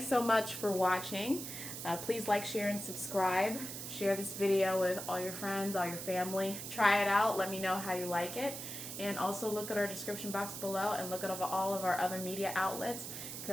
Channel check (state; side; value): noise; right; hiss, 7 dB below the sound